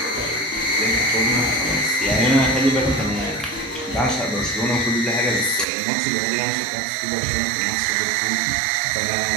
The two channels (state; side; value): drops out; left; at 5.7 s